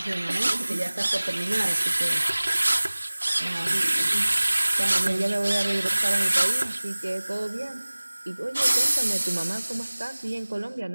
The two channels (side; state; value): both; inverted; correlation -1.00